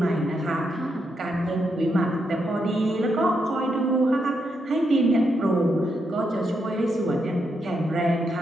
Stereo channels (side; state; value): both; normal; correlation 0.81